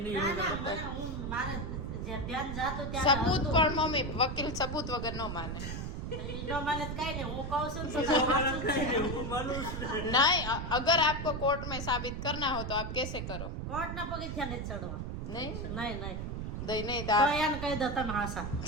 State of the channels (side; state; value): right; noise; rumble, 5 dB below the sound